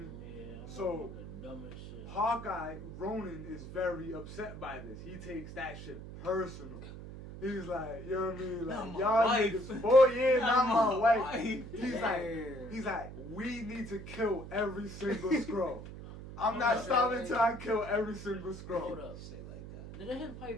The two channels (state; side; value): noise; right; hum, 12 dB below the sound